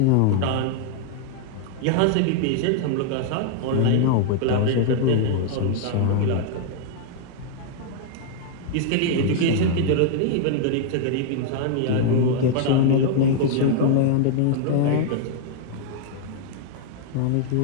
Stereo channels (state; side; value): different; both; correlation 0.00